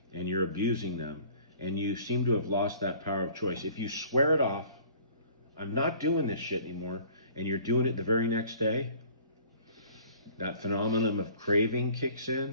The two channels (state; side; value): inverted; both; correlation -0.51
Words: and you're abusing them, and you seem to have lost that power of choice, if you swear it off, I'm not doing this shit anymore, and you're doing it the very next day, that phenomenon of craving kicks